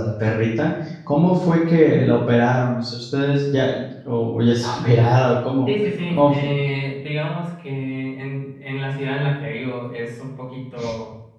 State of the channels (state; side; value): identical; both; correlation 1.00